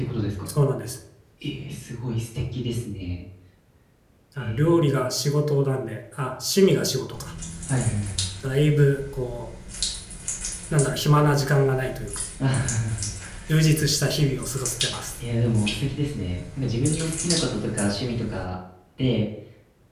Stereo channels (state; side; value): identical; both; correlation 1.00